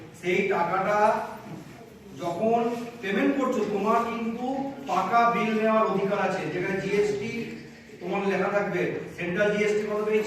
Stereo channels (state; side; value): identical; both; correlation 1.00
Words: সেই টাকাটা যখন পেমেন্ট করছো তোমার কিন্তু পাকা বিল নেওয়ার অধিকার আছে, যেখানে জিএসটি তোমার লেখা থাকবে, সেন্ট্রাল জিএসটি কত